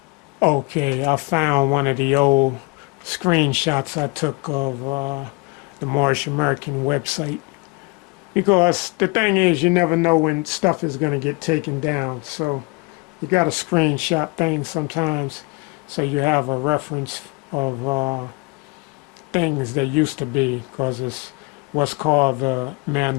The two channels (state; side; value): quieter; right; 27.5 dB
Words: Okay, I found one of the old screenshots I took of the Moorish American website. Because the thing is, you never know when stuff is going to get taken down. So you got to screenshot things sometimes so you have a reference of things that used to be, because it's what's called the